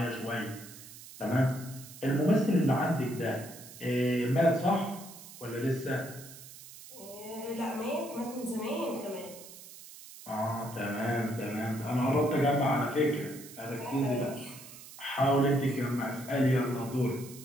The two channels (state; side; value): noise; right; hiss, 16 dB below the sound